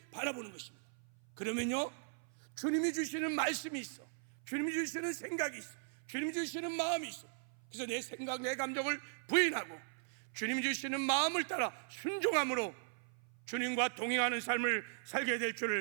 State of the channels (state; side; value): silent; left; 52 dB below the other